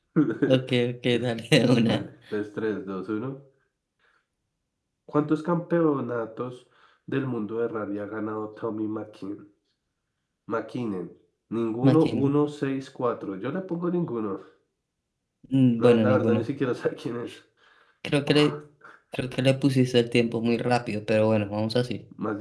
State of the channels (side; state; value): both; identical; correlation 1.00